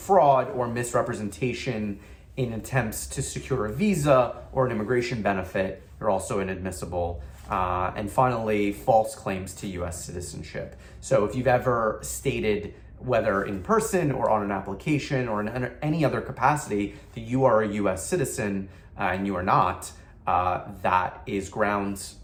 or misrepresentation in attempts to secure a visa or an immigration benefit, you're also inadmissible. And finally, false claims to US citizenship. So if you've ever stated, whether in person or on an application or in any other capacity, that you are a US citizen and you are not, that is grounds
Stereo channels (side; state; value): both; identical; correlation 1.00